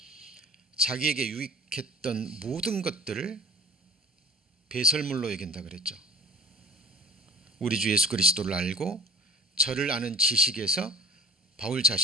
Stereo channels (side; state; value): both; normal; correlation 0.45